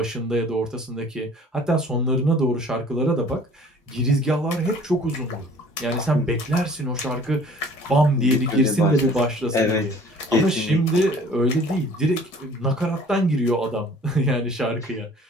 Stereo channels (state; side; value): normal; both; correlation 0.50